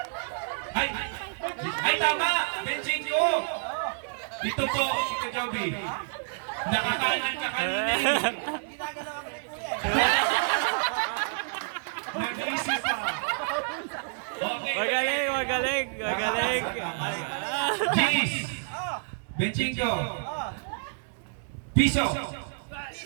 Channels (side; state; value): left; silent; 59 dB below the other